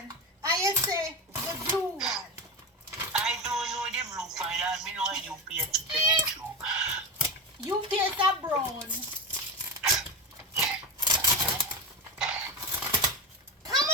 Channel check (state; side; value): normal; both; correlation 0.19